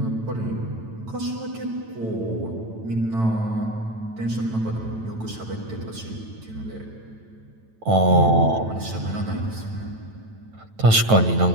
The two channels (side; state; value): left; late; 9.0 ms